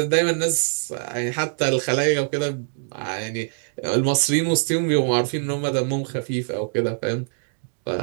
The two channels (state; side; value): silent; left; digital silence